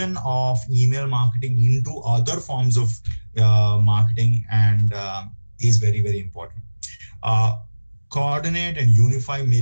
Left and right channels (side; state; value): both; inverted; correlation -1.00